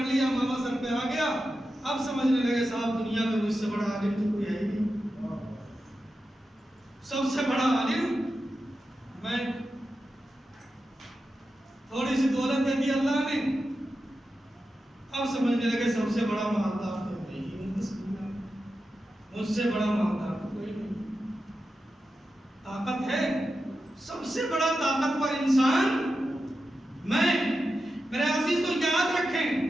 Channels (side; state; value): both; normal; correlation 0.91